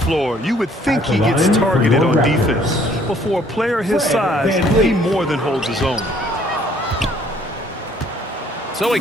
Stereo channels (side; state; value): both; normal; correlation 0.61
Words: you would think he gets targeted on defense. But for a player his size, he more than holds his own. So he